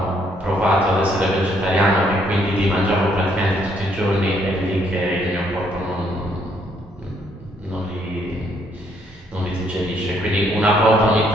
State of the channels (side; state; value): both; normal; correlation 0.69